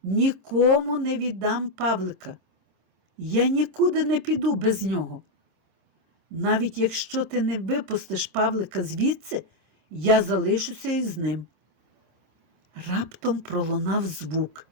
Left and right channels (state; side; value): late; left; 26 ms